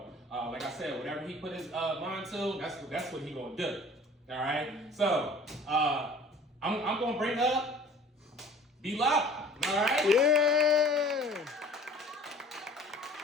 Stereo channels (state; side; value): normal; both; correlation 0.48